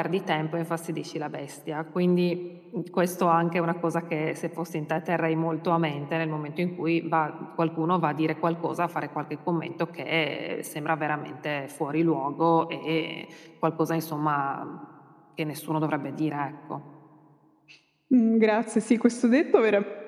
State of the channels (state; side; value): identical; both; correlation 1.00